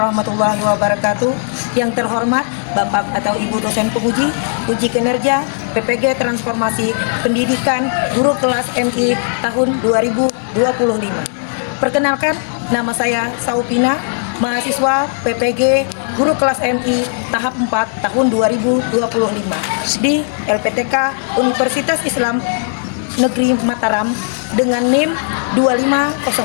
wabarakatuh. Yang terhormat Bapak atau Ibu dosen penguji uji kinerja PPG Transformasi Pendidikan Guru Kelas MI tahun 2025. Perkenalkan, nama saya Saupina, mahasiswa PPG Guru Kelas MI tahap 4 tahun 2025 di LPTK Universitas Islam Negeri Mataram dengan NIM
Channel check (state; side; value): silent; right; digital silence